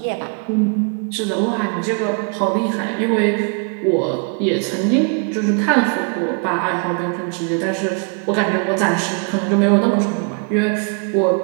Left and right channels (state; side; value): quieter; left; 39.3 dB